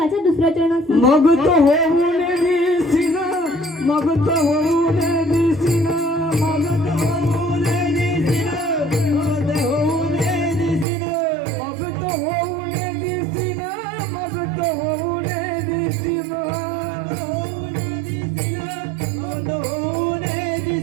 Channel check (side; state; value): left; drops out; at 10.9 s